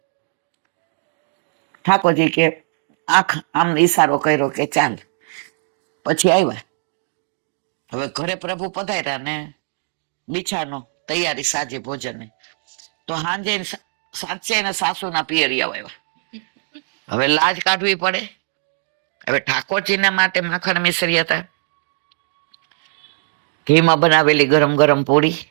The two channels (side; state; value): left; silent; digital silence